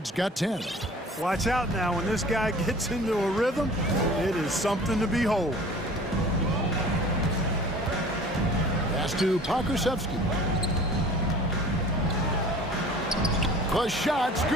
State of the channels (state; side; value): normal; both; correlation 0.45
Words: got 10. Watch out now. When this guy gets into a rhythm, it is something to behold. Pass to Pakusevsky. The shot's